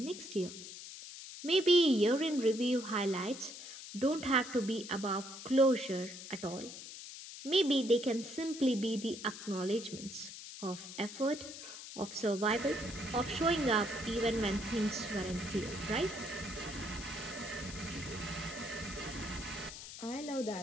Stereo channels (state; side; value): noise; left; hiss, 12 dB below the sound